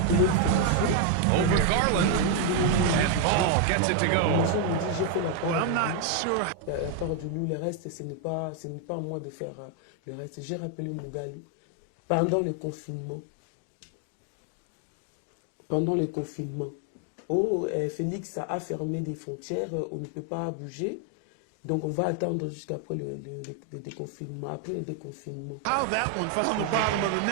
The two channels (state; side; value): different; both; correlation 0.01